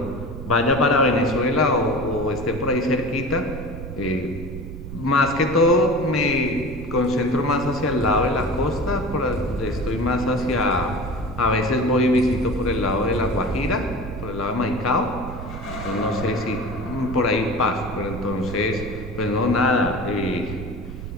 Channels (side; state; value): right; noise; rumble, 10 dB below the sound